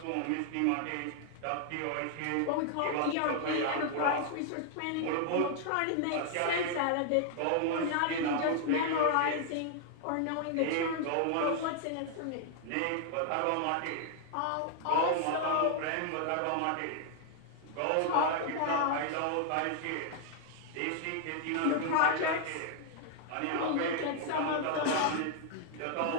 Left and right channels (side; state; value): both; different; correlation 0.00